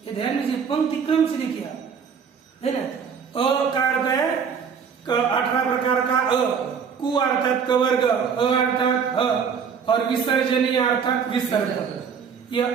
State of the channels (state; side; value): quieter; left; 6.6 dB